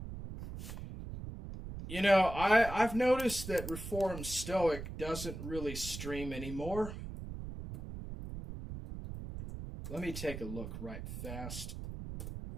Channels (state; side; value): noise; right; rumble, 8 dB below the sound